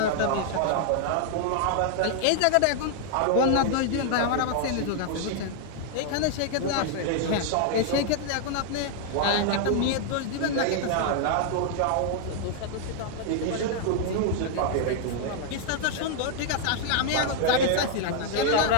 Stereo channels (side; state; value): both; different; correlation 0.00